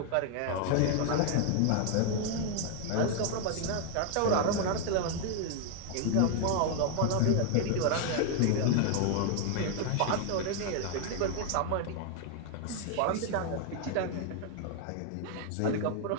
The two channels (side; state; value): both; different; correlation 0.00